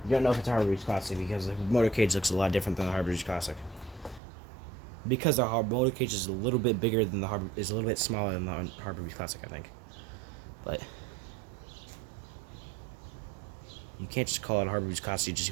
You don't know if it's a Harbor's Classic because the motor cage looks a lot different than the Harbor's Classic. Because the motor cage is a little bit bigger than is a little bit smaller than the Harbor's Classic, I think. But you can't just call it a Harbor's Classic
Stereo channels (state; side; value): drops out; left; at 4.2 s